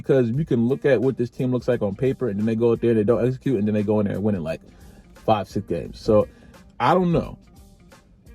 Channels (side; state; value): both; identical; correlation 1.00